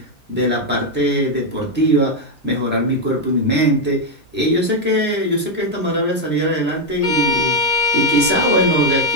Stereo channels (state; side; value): normal; both; correlation 0.03